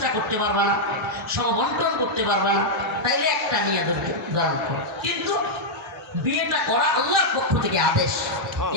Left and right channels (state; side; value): normal; both; correlation -0.04